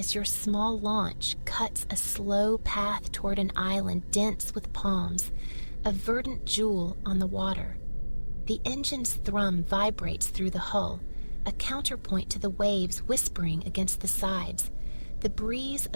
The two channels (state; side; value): inverted; both; correlation -1.00